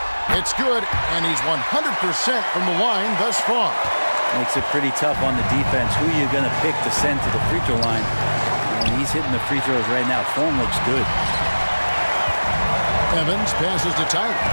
It's good, and he's 100% from the line thus far. Makes it pretty tough on the defense. Who are you going to pick to send to the free throw line? And he's hitting the free throws right now. Form looks good. Evans passes to Tyler.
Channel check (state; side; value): inverted; both; correlation -1.00